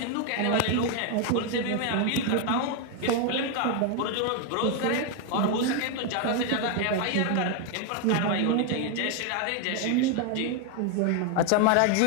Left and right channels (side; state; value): both; different; correlation 0.01